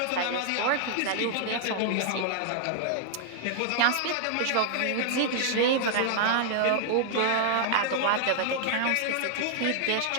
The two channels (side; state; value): both; different; correlation -0.01